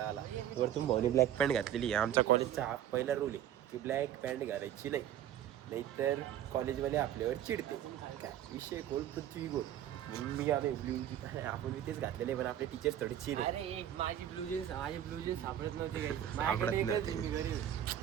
आला. वरतून भाऊने ब्लॅक पॅन्ट घातलेली. आमच्या कॉलेजचा हा पहिला रूल आहे की ब्लॅक पॅन्ट घालायची नाही, नाहीतर कॉलेजवाले आपल्यावर चिडते. काय विषय गोल पृथ्वी गोल. म्हणून मी आलो ब्ल्यू जीन्स. आपण मी तेच घातलेले, पण आपले टीचर्स थोडे चिड. अरे माझी ब्लू जीन्स सापडत नव्हती. सापडत नव्हती.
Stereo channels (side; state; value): left; quieter; 11.0 dB